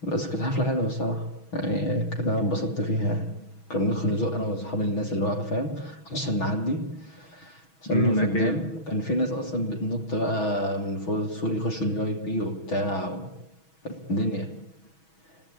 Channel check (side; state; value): right; late; 6.2 ms